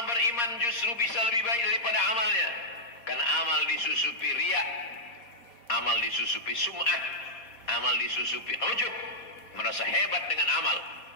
beriman justru bisa lebih baik daripada amalnya? Karena amal disusupi riya, amal disusupi sum'ah, amal disusupi ujub, merasa hebat dengan amal.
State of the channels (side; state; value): right; late; 4.2 ms